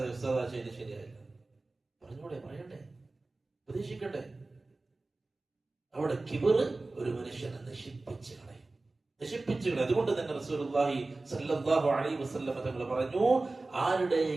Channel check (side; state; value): left; quieter; 3.2 dB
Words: ഉസ്താദാ ചെയ്ത് ശരിയായില്ല, പറഞ്ഞൂടെ, പറയണ്ടേ, ഉപദേശിക്കട്ടെ. അവിടെ കിബറ് ഒരു മനുഷ്യനെ നശിപ്പിച്ചു കളയും. അതുകൊണ്ട് തന്നെ റസൂലുള്ളാഹി സ്വല്ലല്ലാഹു അലൈഹി വസല്ലം തങ്ങൾ പറഞ്ഞു,